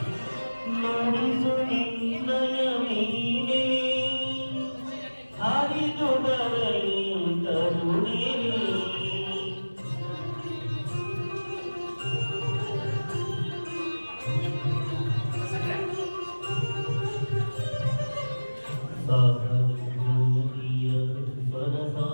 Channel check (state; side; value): inverted; both; correlation -1.00